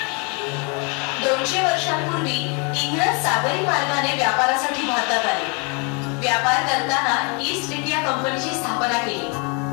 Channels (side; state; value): right; quieter; 33.6 dB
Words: 200 वर्षांपूर्वी इंग्रज सागरी मार्गाने व्यापारासाठी भारतात आले. व्यापार करताना ईस्ट इंडिया कंपनीची स्थापना केली.